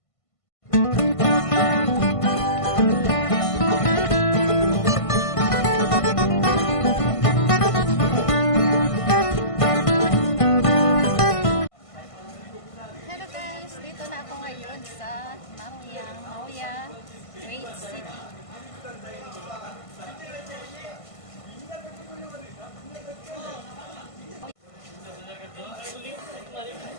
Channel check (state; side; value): late; right; 1.5 ms